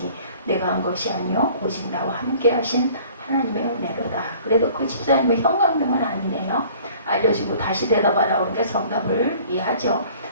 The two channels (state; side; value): inverted; both; correlation -0.51